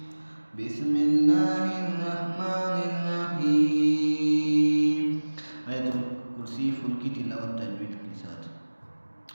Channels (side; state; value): both; inverted; correlation -1.00